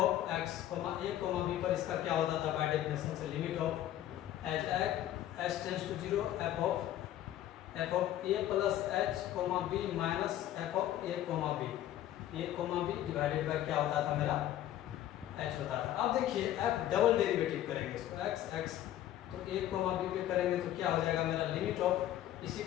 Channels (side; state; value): right; quieter; 12.7 dB